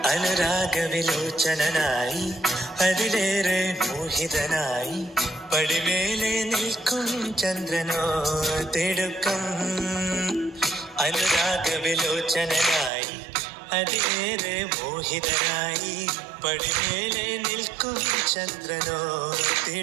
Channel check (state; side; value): drops out; left; at 12.9 s